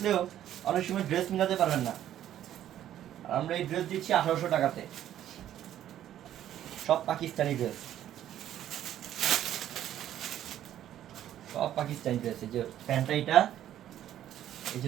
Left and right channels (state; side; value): quieter; left; 11.6 dB